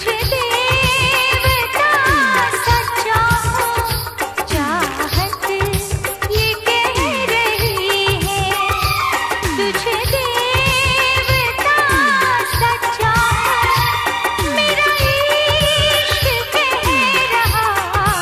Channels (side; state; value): both; identical; correlation 1.00